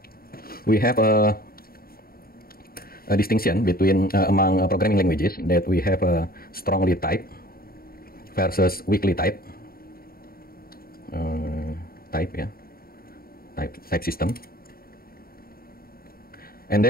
We have a distinction between among programming languages, that we have a strongly typed versus weakly typed type system. And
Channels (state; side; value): late; right; 0.43 ms